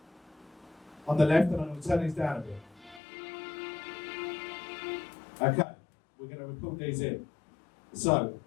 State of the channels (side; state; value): right; drops out; at 3.0 s